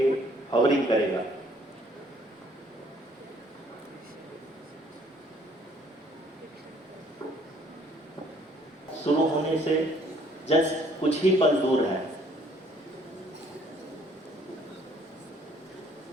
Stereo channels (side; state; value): both; normal; correlation 0.61